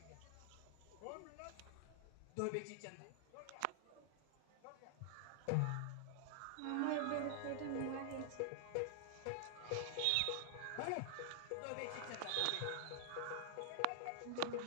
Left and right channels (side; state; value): both; different; correlation 0.00